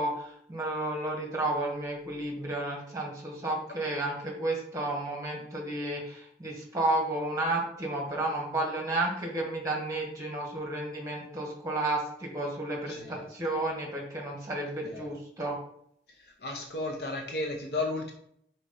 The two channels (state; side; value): normal; both; correlation 0.38